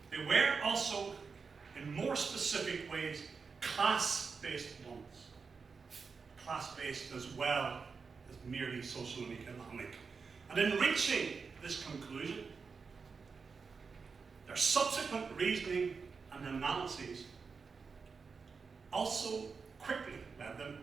they were also, in more specific ways, class-based ones. Class-based as well as merely social and economic. And in reaching this conclusion, their subsequent reasoning and analyses also quickly led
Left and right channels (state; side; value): quieter; left; 5.1 dB